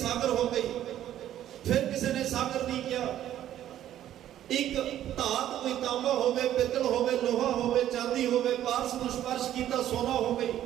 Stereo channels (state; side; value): quieter; left; 11.9 dB